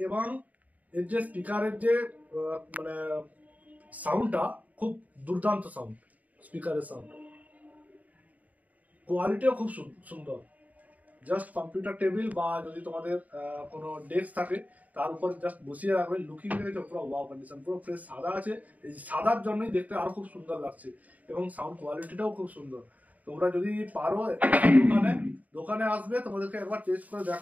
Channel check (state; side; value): late; left; 0.074 ms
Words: এবং এর যে স্পিকারের যে মানে সাউন্ডটা, খুব দুর্দান্ত সাউন্ড, স্পিকারের সাউন্ড কোয়ালিটিও খুব সুন্দর। জাস্ট কম্পিউটার টেবিল বা যদি তোমাদের কোনো ডেস্ক থাকে, তার উপর জাস্ট বসিয়ে রাখবে, লুকিং দেখেছো পুরো ওয়াও কন্ডিশন, পুরো ফ্রেশ সাদা আছে। এই সাদার জন্যই দেখতে আরো খুব সুন্দর লাগছে এবং সাউন্ড কোয়ালিটিটাও খুব সুন্দর। তোমরা যদি পারো দোকানে আসবে, তোমাদেরকে একবার টেস্ট করে